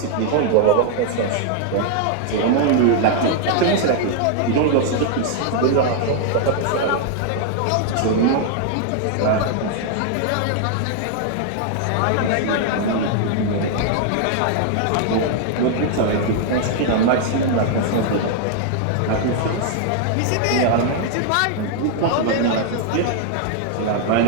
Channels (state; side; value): different; both; correlation 0.00